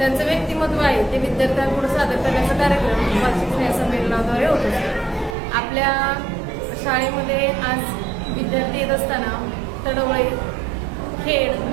व्यक्तिमत्व आहे ते विद्यार्थ्यांपुढे सादर करण्याचा कार्यक्रम वार्षिक स्नेह संमेलनाद्वारे होत असतो. आपल्या शाळेमध्ये आज विद्यार्थी येत असताना तडवळे, खेड,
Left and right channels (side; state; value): left; drops out; at 5.4 s